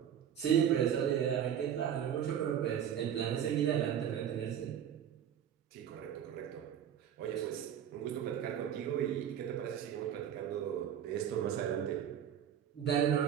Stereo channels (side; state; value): left; quieter; 9.3 dB